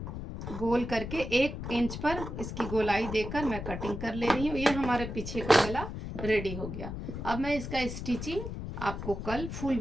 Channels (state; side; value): noise; left; rumble, 7 dB below the sound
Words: गोल करके 1 इंच पर इसकी गोलाई देकर मैं कटिंग कर ले रही हूँ। ये हमारे पीछे का गला रेडी हो गया। अब मैं इसका स्टिचिंग आपको कल फुल